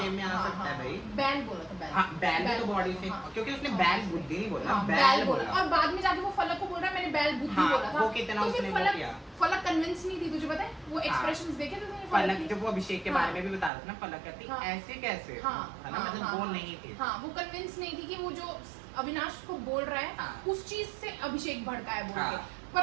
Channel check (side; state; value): left; drops out; at 13.7 s